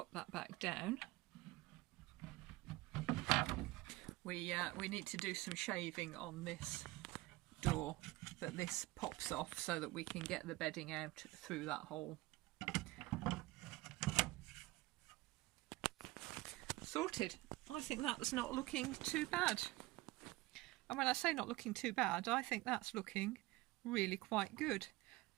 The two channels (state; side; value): quieter; left; 19.6 dB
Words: that back down, we need to do some shaving on this door, but this pops off so that we can get the bedding out through that hole. Sorted. I think that's not looking too bad. And when I say not looking too bad, I think that's looking really quite good.